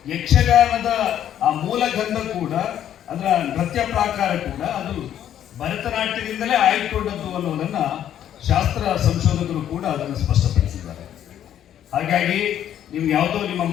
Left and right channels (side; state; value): right; quieter; 10.6 dB